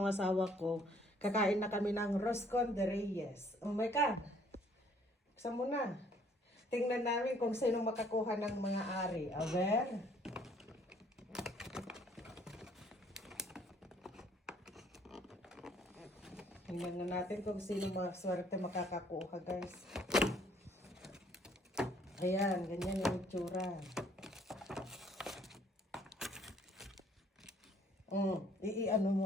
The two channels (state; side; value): normal; both; correlation 0.62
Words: asawa ko, kakain na kami ng Roscon de Reyes. Oh my God! Buksan mo na. Tingnan namin kung sino makakuha ng mga ari. Aber? Tingnan na natin kung sino maswerte makakakuha, guys. Ayan, ganyan yung itsura. Ano